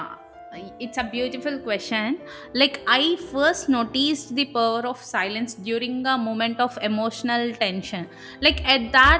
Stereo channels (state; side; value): identical; both; correlation 1.00